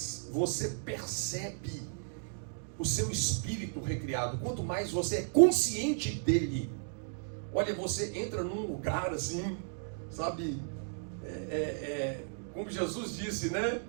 você percebe o seu espírito recriado, quanto mais você é consciente dele, olha, você entra num lugar assim, sabe, como Jesus disse, né?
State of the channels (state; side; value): silent; left; digital silence